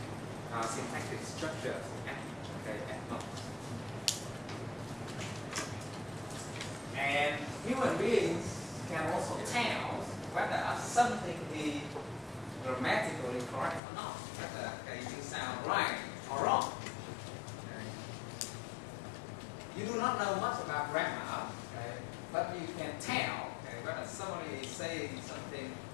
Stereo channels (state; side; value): drops out; right; at 13.8 s